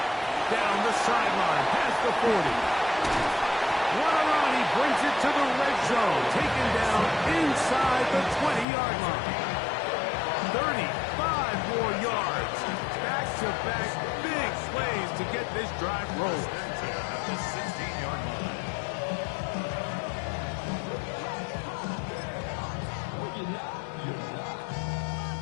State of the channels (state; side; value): drops out; right; at 8.7 s